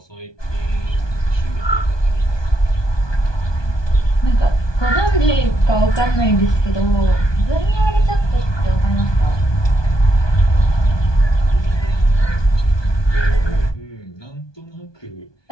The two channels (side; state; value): right; late; 1.2 ms